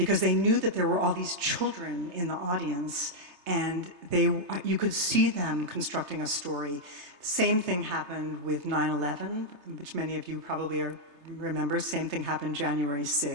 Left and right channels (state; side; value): late; left; 3.3 ms